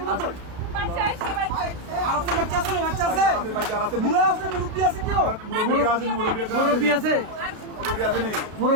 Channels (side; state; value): left; late; 32 ms